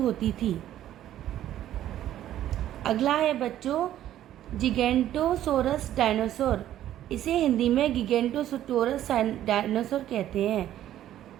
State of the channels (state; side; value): quieter; left; 12.3 dB